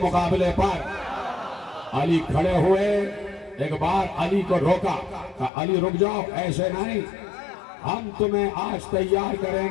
مقابلے پر. علی کھڑے ہوئے، ایک بار علی کو روکا. کہا علی رک جاؤ، ایسے نہیں، ہم تمہیں آج تیار کریں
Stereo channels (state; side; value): drops out; right; at 5.5 s